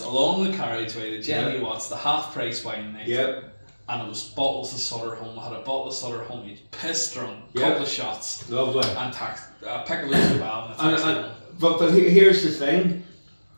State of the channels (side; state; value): both; inverted; correlation -1.00